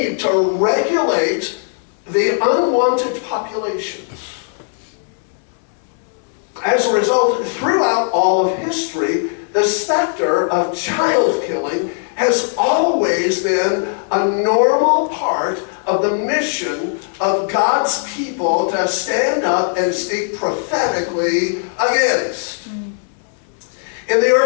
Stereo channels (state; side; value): silent; right; 67 dB below the other